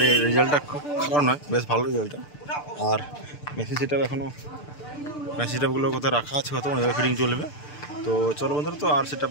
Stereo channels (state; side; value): late; right; 6.8 ms